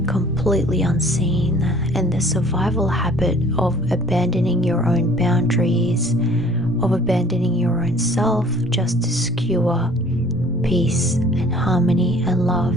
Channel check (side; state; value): both; normal; correlation 0.53